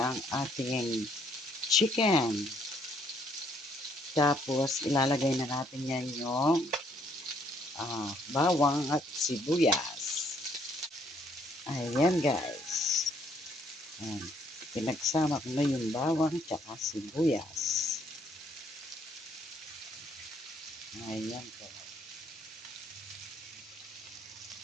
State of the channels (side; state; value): both; normal; correlation 0.67